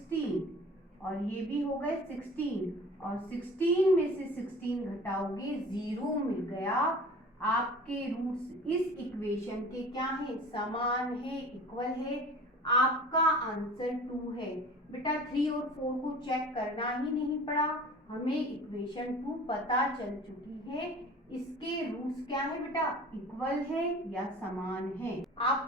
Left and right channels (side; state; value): both; normal; correlation 0.42